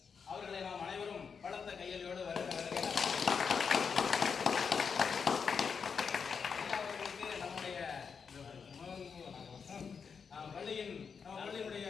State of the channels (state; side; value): quieter; right; 6.1 dB